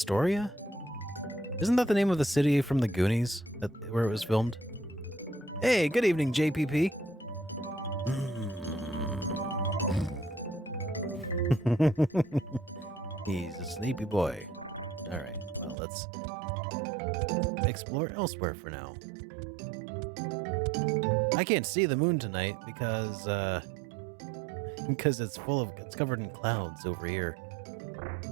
Isn't that the name of the city from the Goonies, where it was filmed? Hey, good evening, JPP. He's a sleepy boy. All right, well, let's explore elsewhere for now. I can't see the moon tonight because it's covered in clouds over here.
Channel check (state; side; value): drops out; left; at 15.8 s